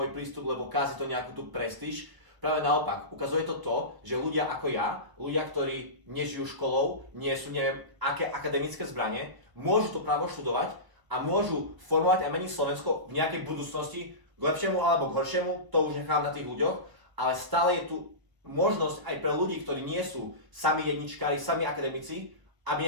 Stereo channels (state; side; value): late; left; 1.2 ms